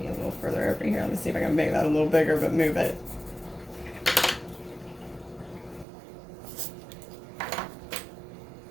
a little further over here. Let me see if I can make that a little bigger, but move it.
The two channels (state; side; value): drops out; left; at 5.9 s